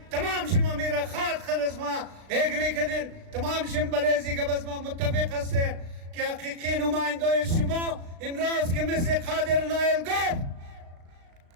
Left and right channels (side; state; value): left; late; 36 ms